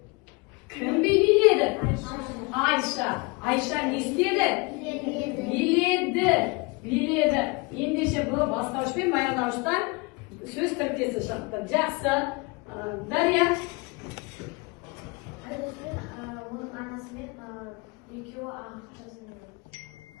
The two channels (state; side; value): quieter; right; 27.7 dB